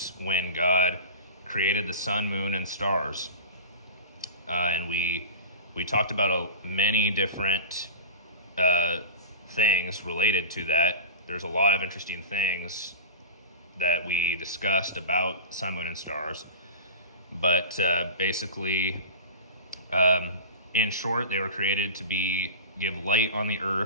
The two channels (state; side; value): inverted; both; correlation -0.31